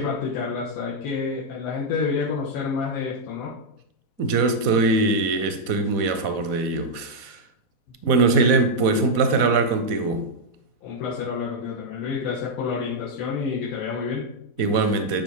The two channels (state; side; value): late; right; 4.1 ms